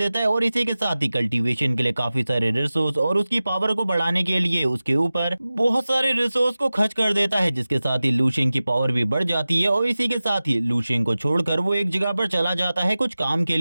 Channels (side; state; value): both; inverted; correlation -0.96